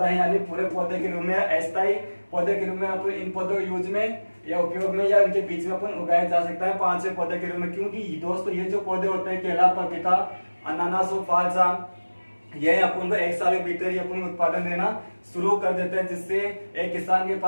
है यानी पूरे पौधे के रूप में, अस्थायी पौधे के रूप में अपन इन पौधों यूज में या उपयोग में या इनके बीच में अपन उगाया जा सकता है 5वें पौधे के रूप में। क्योंकि दोस्तों ये जो पौधे होते हैं केला, पपीता, अनानास और फालसा, ये अपन को 1 साल के भीतर ही अपन उत्पादन देना शुरू कर देते हैं, जिससे एक किसान के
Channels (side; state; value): both; inverted; correlation -1.00